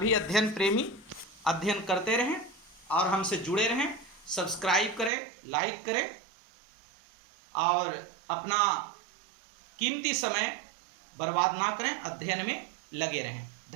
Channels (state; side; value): drops out; left; at 5.1 s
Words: अध्ययन प्रेमी अध्ययन करते रहें और हमसे जुड़े रहें। सब्सक्राइब करें, लाइक करें और अपना कीमती समय बर्बाद ना करें, अध्ययन में लगे रहें।